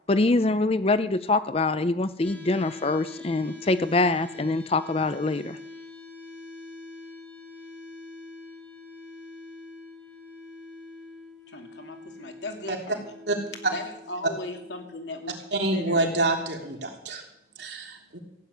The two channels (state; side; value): normal; both; correlation 0.27